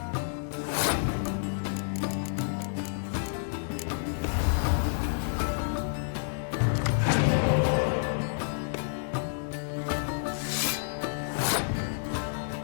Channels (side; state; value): right; silent; digital silence